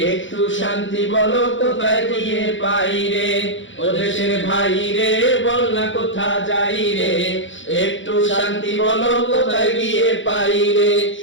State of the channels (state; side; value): late; right; 0.55 ms